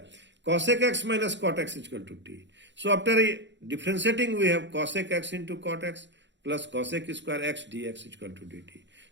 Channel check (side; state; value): left; late; 0.52 ms